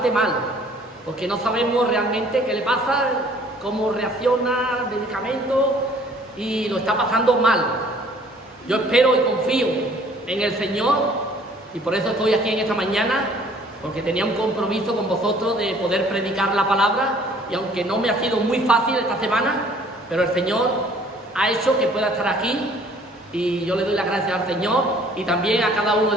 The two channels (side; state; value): both; normal; correlation 0.56